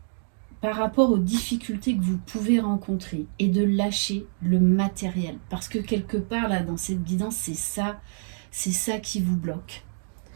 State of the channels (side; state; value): left; silent; digital silence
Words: par rapport aux difficultés que vous pouvez rencontrer et de lâcher le matériel. Parce que quelque part, là, dans cette guidance, c'est ça qui vous bloque.